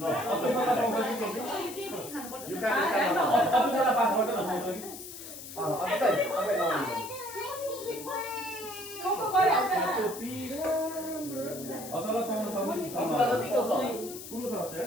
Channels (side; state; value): left; noise; hiss, 12 dB below the sound